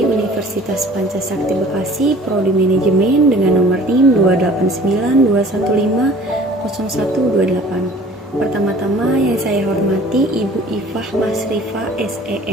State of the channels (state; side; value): normal; both; correlation 0.49